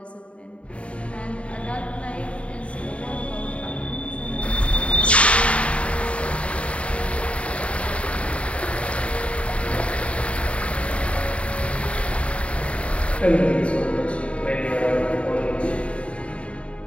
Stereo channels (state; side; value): late; right; 0.062 ms